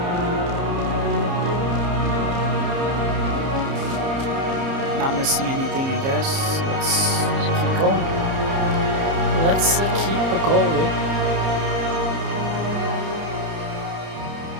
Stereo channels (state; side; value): late; left; 30 ms